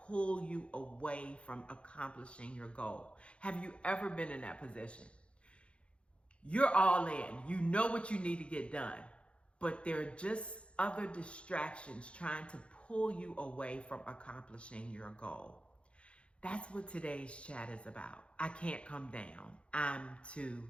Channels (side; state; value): right; late; 0.059 ms